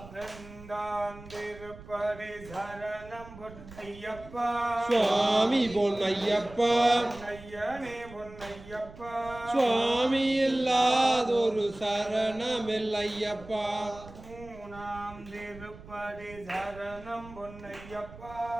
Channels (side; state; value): right; noise; rumble, 17 dB below the sound